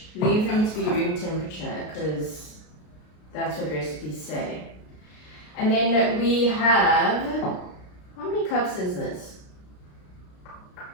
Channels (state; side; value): late; right; 33 ms